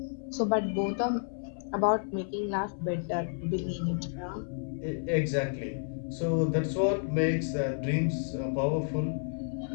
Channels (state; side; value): silent; right; 57 dB below the other